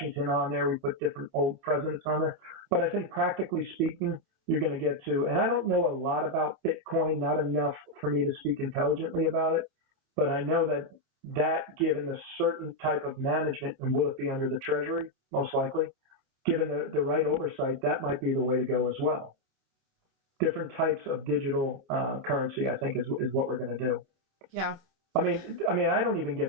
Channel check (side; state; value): left; late; 27 ms